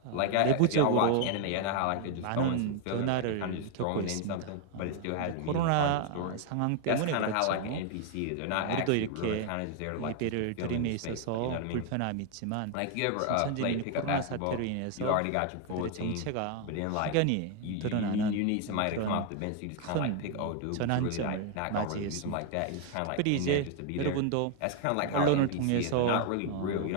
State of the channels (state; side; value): different; both; correlation 0.01